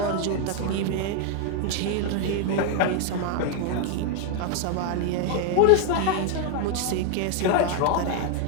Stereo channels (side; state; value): both; different; correlation 0.00